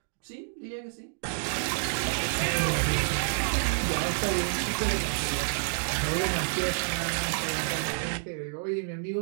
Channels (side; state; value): left; silent; digital silence